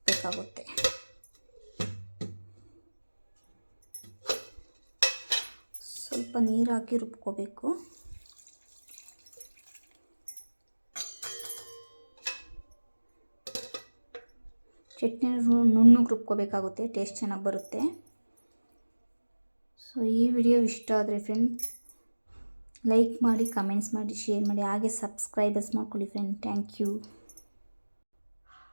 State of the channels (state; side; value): inverted; both; correlation -1.00